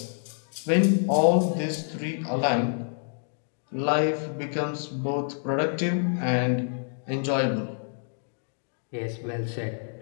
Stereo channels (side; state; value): right; silent; digital silence